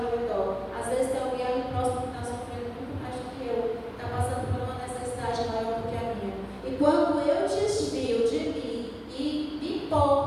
meu redor. Às vezes tem alguém ali próximo que está sofrendo muito mais do que eu, está passando por uma necessidade maior do que a minha. E quando eu desvio de mim e me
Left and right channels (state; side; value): identical; both; correlation 1.00